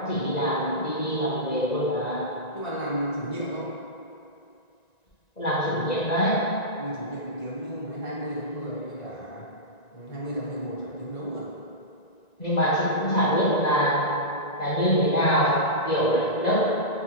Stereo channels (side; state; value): right; late; 1.9 ms